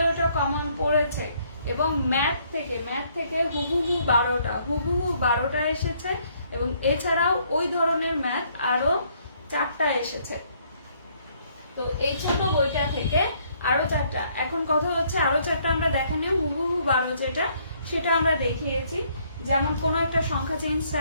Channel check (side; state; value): both; inverted; correlation -0.67